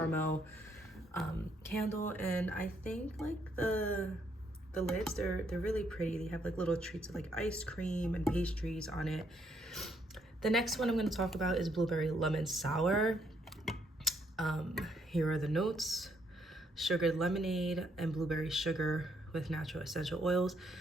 candle, and I think like the lids, they're really pretty. They have like little treats of like ice cream and pastries on it. The next one I'm going to talk about is Blueberry Lemon Sour. Here are the notes. Sugared lemonade and blueberry sugar with natural essential oils.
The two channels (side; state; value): both; normal; correlation 0.72